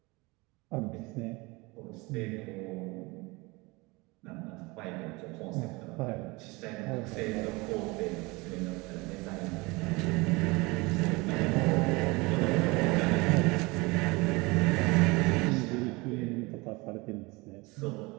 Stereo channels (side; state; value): left; quieter; 24.7 dB